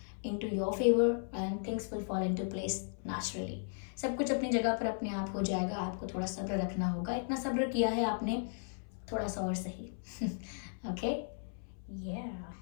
into your favor and things will fall into place naturally. सब कुछ अपनी जगह पर अपने आप हो जाएगा. आपको थोड़ा सब्र रखना होगा. इतना सब्र किया है आपने, थोड़ा सा और सही. ओके,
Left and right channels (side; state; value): right; silent; 54 dB below the other